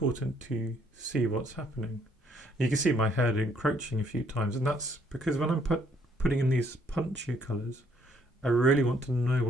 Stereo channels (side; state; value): both; normal; correlation 0.67